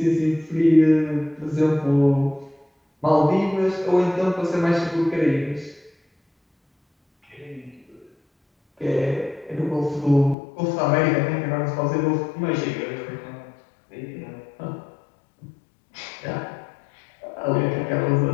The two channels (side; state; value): right; drops out; at 10.4 s